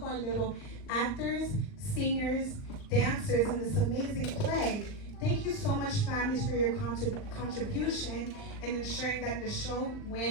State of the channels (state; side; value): late; right; 39 ms